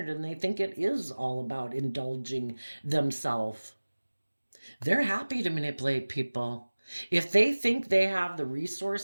and they think it is all about indulging themselves. They're happy to manipulate people. If they think they have the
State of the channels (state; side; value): inverted; both; correlation -1.00